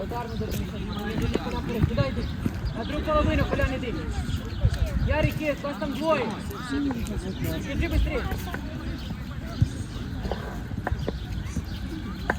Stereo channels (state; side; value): identical; both; correlation 1.00